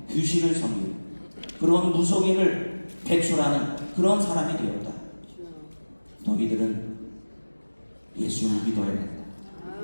귀신을 섬기고 그런 무속인을 배출하는 그런 사람이 되었다. 너희들은 예수를 믿어야 된다.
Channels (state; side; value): inverted; both; correlation -1.00